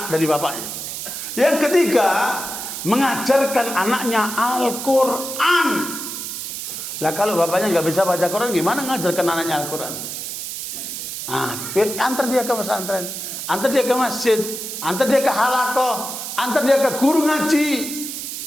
dari bapaknya. Yang ketiga, mengajarkan anaknya Al-Quran. Lah kalau bapaknya nggak bisa baca Quran, gimana ngajarkan anaknya Al-Quran? Antar dia ke pesantren, antar dia ke masjid, antar dia ke halakoh, antar dia ke guru ngaji.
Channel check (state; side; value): noise; right; hiss, 6 dB below the sound